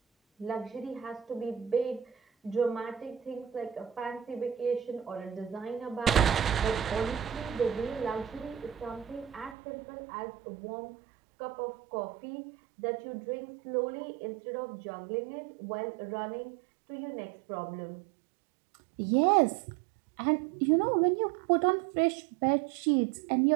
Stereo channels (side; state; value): left; drops out; at 9.6 s